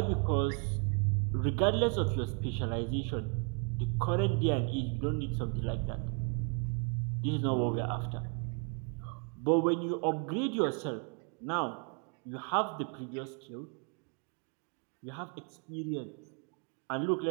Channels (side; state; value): left; quieter; 36.8 dB